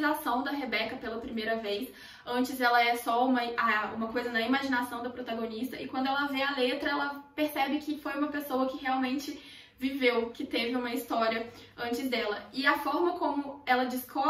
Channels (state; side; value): identical; both; correlation 1.00